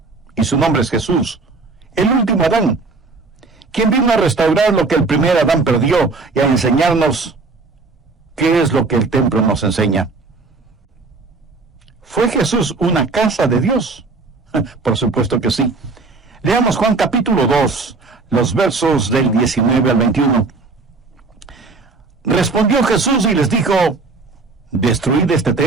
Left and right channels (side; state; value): left; quieter; 3.9 dB